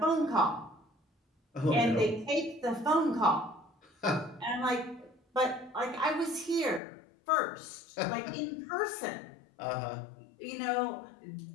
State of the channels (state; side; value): drops out; right; at 6.8 s